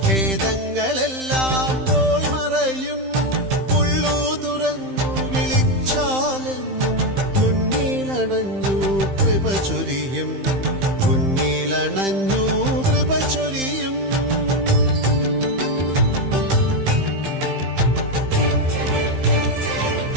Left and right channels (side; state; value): left; late; 15 ms